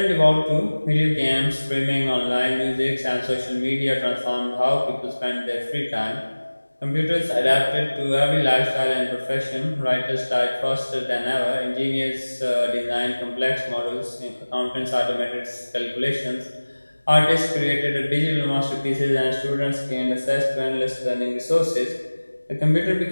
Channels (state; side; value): inverted; both; correlation -1.00